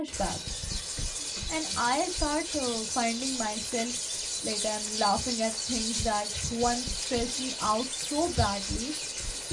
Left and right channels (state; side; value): identical; both; correlation 1.00